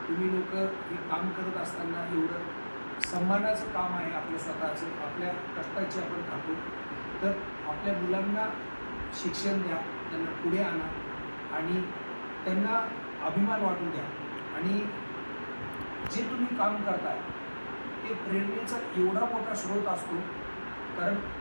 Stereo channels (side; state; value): both; inverted; correlation -1.00